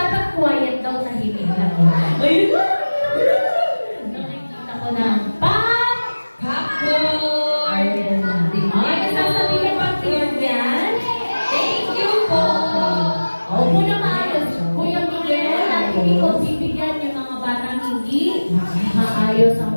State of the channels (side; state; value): both; inverted; correlation -1.00